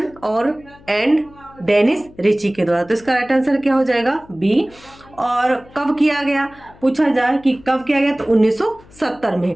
एंड डेनिस रिची के द्वारा। तो इसका राइट आंसर क्या हो जाएगा, बी। और कब किया गया, पूछा जाए कि कब किया गया, तो 1970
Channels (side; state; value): left; noise; hum, 25 dB below the sound